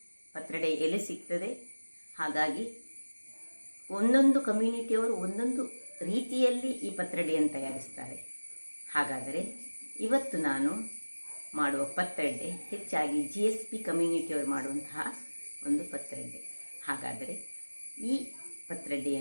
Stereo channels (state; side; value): inverted; both; correlation -1.00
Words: ಪತ್ರೊಡೆ ಎಲೆ ಸಿಗ್ತದೆ. ಹಾಗಾಗಿ ಒಂದೊಂದು ಕಮ್ಯುನಿಟಿಯವರು ಒಂದೊಂದು ರೀತಿಯಲ್ಲಿ ಈ ಪತ್ರೊಡೆಯನ್ನು ತಯಾರಿಸ್ತಾರೆ. ಹಾಗಾದರೆ ಇವತ್ತು ನಾನು ಮಾಡುವ ಪತ್ರೊಡೆ ಹೆಚ್ಚಾಗಿ GSP ಕಮ್ಯುನಿಟಿಯವರು ಮಾಡುವಂತಹ ಒಂದು ಪತ್ರೊಡೆ. ಹಾಗಾದರೆ ಈ